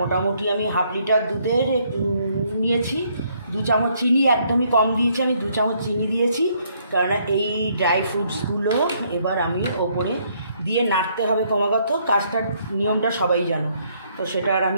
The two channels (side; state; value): both; inverted; correlation -0.69